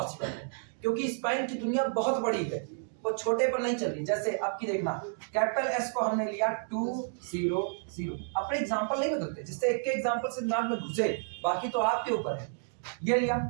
है, क्योंकि स्पैन की दुनिया बहुत बड़ी है, वो छोटे पर नहीं चल रही। जैसे अब की देखना, कैपिटल S को हमने लिया 2 0 0, अपने एग्जांपल नहीं बदलते, जिससे एक के एग्जांपल से दिमाग में घुसे, बाकी तो आपके ऊपर है। ये लिया,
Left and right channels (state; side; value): silent; left; digital silence